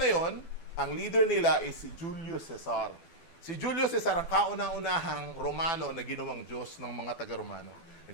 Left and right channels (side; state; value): right; late; 12 ms